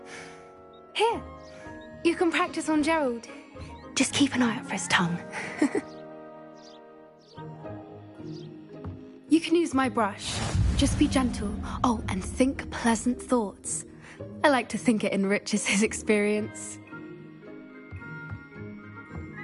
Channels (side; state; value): both; identical; correlation 1.00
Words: Here. You can practice on Gerald. Just keep an eye out for his tongue. You can use my brush. Just be gentle. Oh, and think pleasant thoughts. I like to think it enriches his experience.